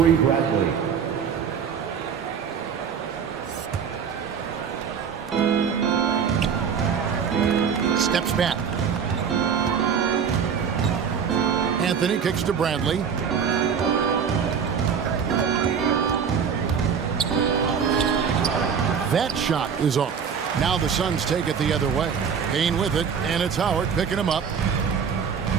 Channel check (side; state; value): left; quieter; 6.9 dB